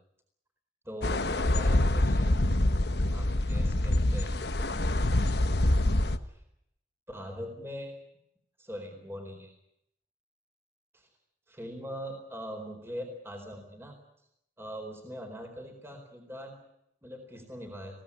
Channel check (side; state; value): both; normal; correlation 0.86